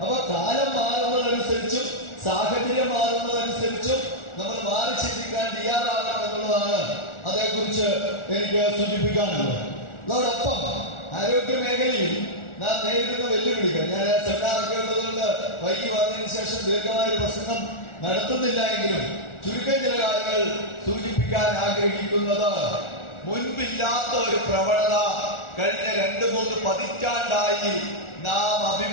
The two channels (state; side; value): late; right; 1.4 ms